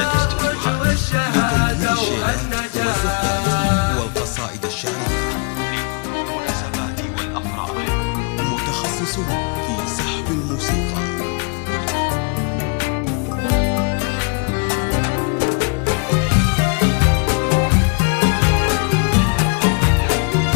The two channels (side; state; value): right; quieter; 33.3 dB